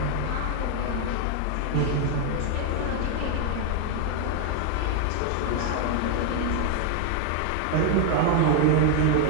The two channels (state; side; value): different; both; correlation 0.00